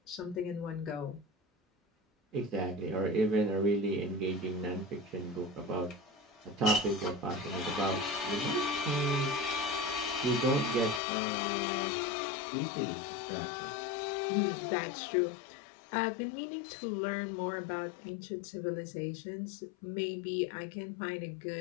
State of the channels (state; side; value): drops out; right; at 11.0 s